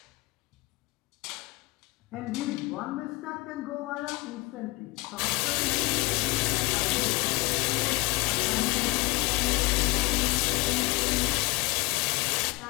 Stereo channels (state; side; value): quieter; right; 24.2 dB